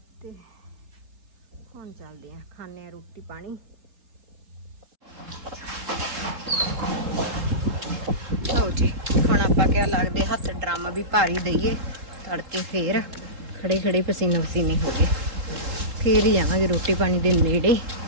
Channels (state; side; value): late; left; 3.7 ms